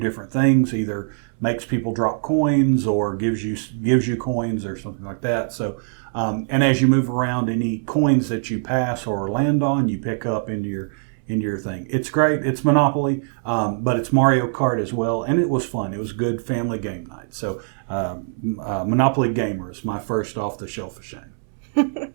things, either makes people drop coins or gives you coins or something like that. So, and as you move around, any coins that you pass or land on, you pick up into your thing. It's great. It's Monopoly, but it's Mario Kart as well, and it was fun. It was good family game night. So, Monopoly Gamer is my first off the shelf of shame.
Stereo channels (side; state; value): left; silent; 64 dB below the other